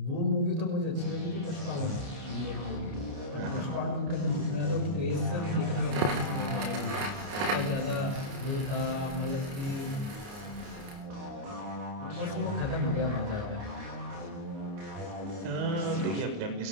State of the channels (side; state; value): left; late; 29 ms